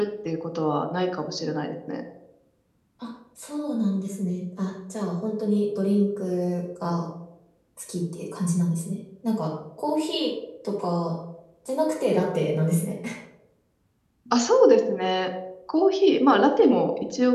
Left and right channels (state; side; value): identical; both; correlation 1.00